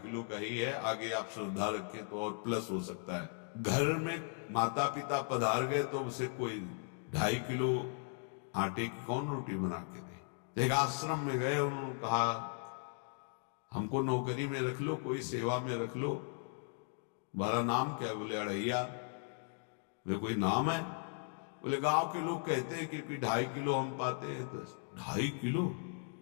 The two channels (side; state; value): right; silent; 53 dB below the other